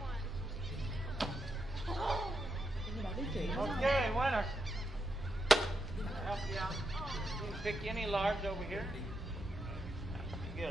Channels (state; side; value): normal; both; correlation 0.83